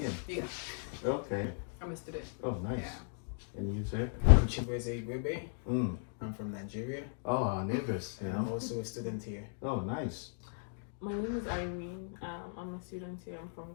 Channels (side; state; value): right; silent; digital silence